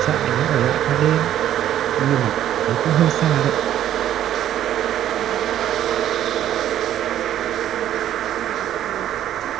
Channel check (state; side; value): quieter; left; 11.5 dB